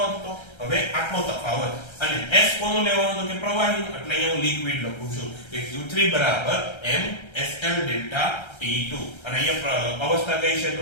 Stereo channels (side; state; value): right; late; 1.3 ms